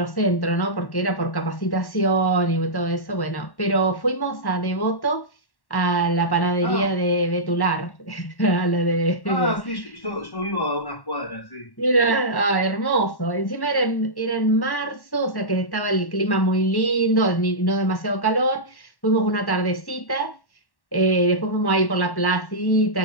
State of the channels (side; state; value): right; late; 1.1 ms